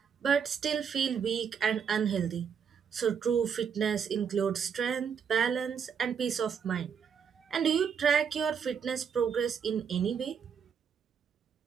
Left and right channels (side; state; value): left; quieter; 7.0 dB